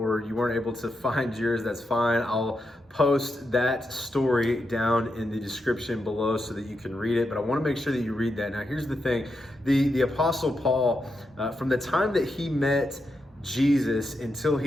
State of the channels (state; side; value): normal; both; correlation 0.85